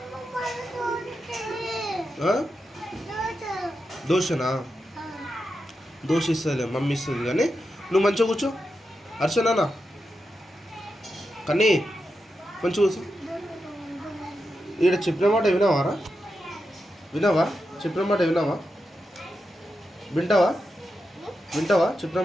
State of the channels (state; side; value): normal; both; correlation 0.88